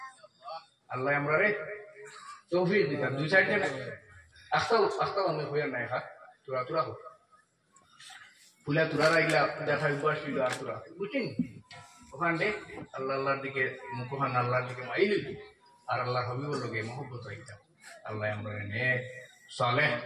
আল্লাহ আমরা রে তৌফিক দিতাম দুই সাইডে আস্তাও আমি হইয়া নাই খা তুরা হোক ফুলা তুরা রাইলা দেখা উপাসিল আর তুরা বুঝছেন ওখান দে আল্লাহর দিকে মুখখান আল্লাহর দিকে মাইলি আর আল্লাহ হবিবর লগে মহব্বত রাইতাম। আল্লাহ আমরা নে সালেহ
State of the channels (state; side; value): identical; both; correlation 1.00